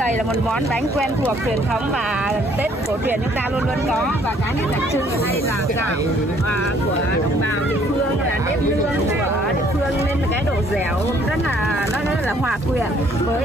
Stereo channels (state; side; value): normal; both; correlation 0.62